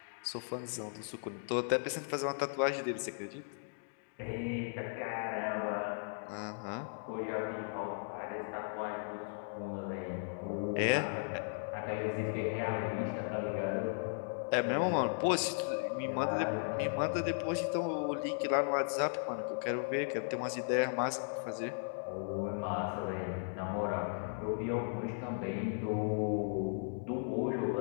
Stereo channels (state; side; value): silent; right; digital silence